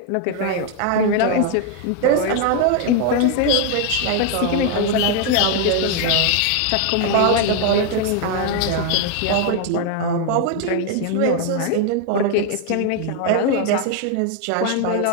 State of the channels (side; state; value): both; different; correlation 0.00